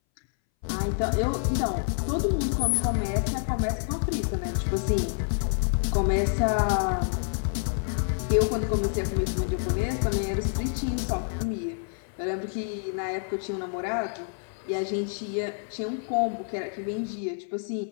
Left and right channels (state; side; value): silent; right; 60 dB below the other